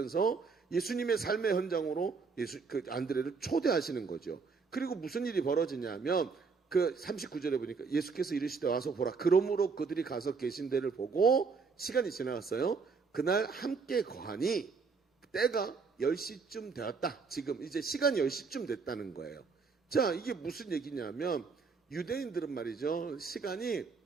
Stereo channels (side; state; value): left; quieter; 4.9 dB